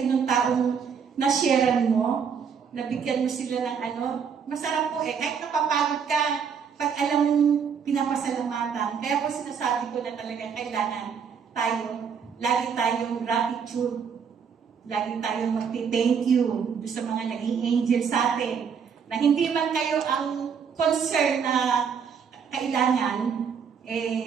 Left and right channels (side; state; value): left; quieter; 6.7 dB